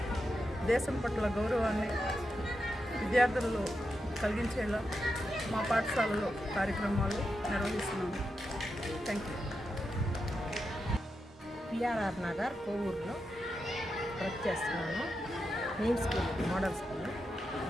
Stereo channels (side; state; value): both; normal; correlation 0.87